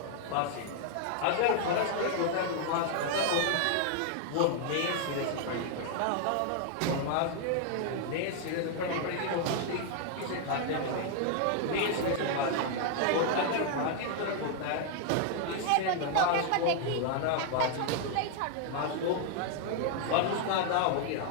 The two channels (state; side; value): different; both; correlation 0.00